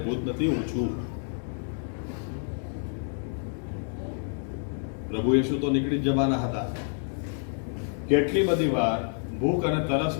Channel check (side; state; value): right; silent; 59 dB below the other